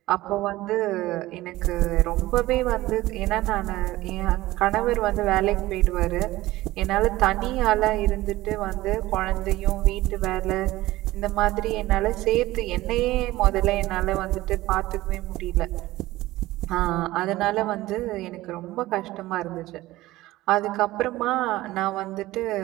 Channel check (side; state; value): left; quieter; 17.5 dB